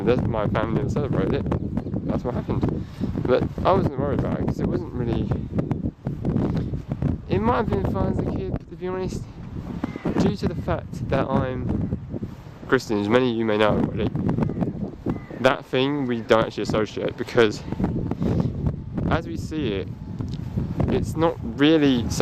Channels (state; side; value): identical; both; correlation 1.00